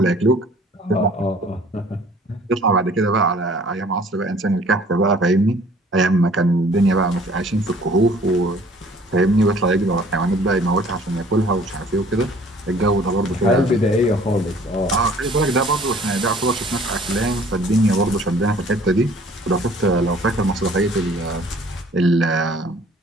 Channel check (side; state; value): both; normal; correlation 0.54